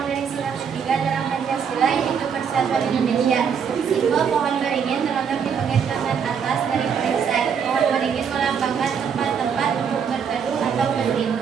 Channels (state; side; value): quieter; left; 7.0 dB